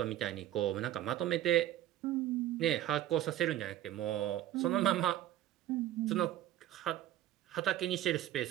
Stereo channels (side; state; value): left; quieter; 13.1 dB